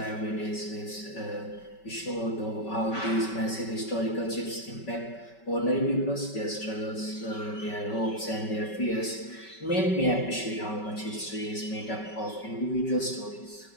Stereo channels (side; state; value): right; late; 5.2 ms